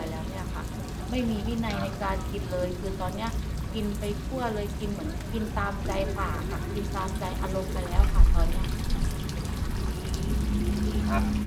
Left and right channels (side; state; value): both; identical; correlation 1.00